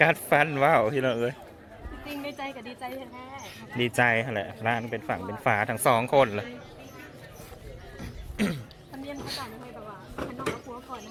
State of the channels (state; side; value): identical; both; correlation 1.00